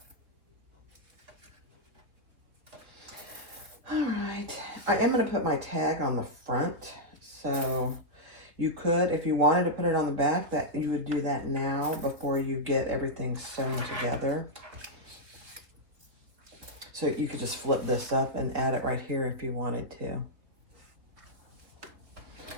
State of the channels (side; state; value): left; late; 3.4 ms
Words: All right, I am going to put my tag on the front, so you could, if you wanted to put it on the back, that you would do that now before you get everything sewn together. So you could just flip this up and add it right here if you wanted to.